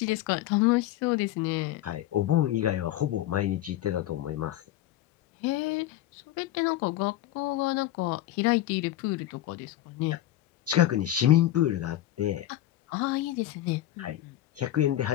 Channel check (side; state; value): right; quieter; 13.6 dB